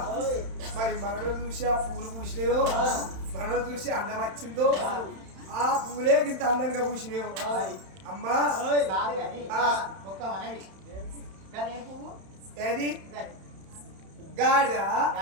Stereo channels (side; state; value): left; late; 31 ms